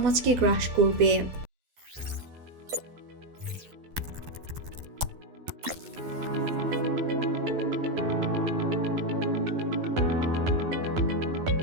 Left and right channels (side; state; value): left; late; 12 ms